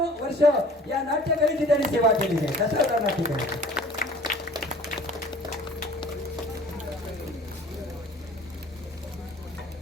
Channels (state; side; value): normal; both; correlation 0.48